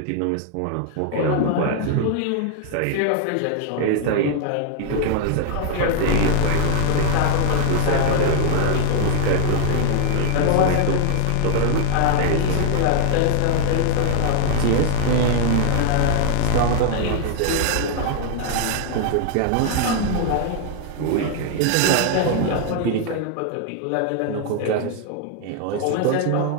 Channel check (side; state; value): both; different; correlation 0.00